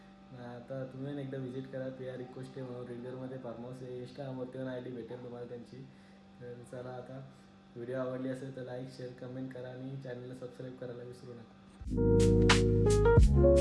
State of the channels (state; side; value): identical; both; correlation 1.00